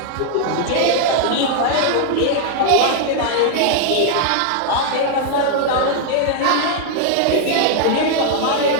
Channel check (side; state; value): both; different; correlation 0.00